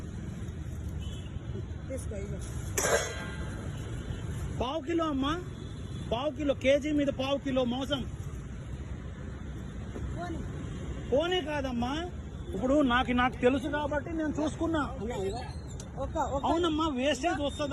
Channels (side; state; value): both; identical; correlation 1.00